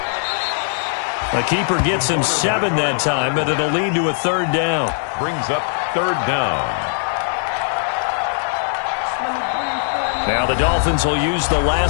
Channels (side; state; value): right; silent; digital silence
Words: The keeper gets him 7 that time, but it'll lead to a 3rd down. Brings up 3rd down. Now the Dolphins will use the